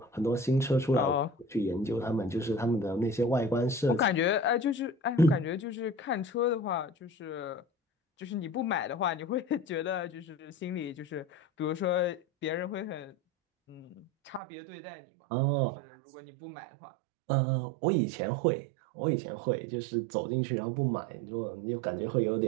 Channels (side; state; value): left; drops out; at 14.4 s